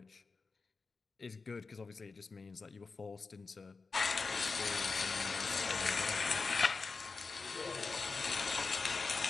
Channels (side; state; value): right; quieter; 4.4 dB